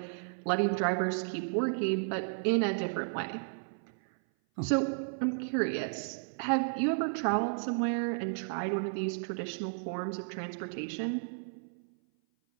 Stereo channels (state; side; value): silent; left; 56 dB below the other